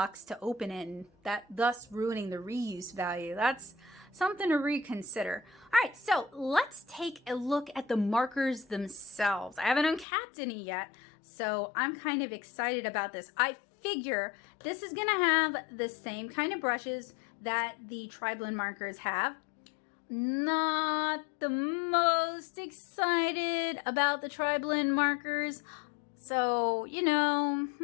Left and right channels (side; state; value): right; drops out; at 10.1 s